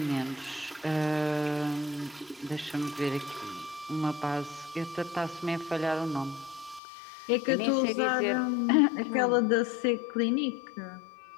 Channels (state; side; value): drops out; right; at 6.8 s